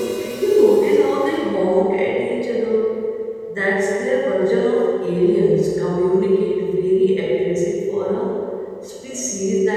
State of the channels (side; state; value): both; identical; correlation 1.00